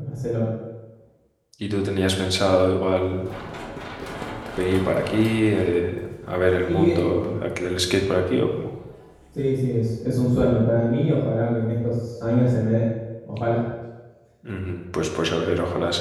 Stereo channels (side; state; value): both; identical; correlation 1.00